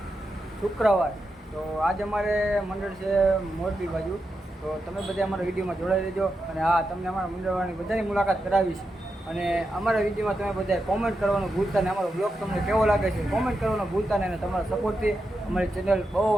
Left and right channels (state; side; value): normal; both; correlation 0.87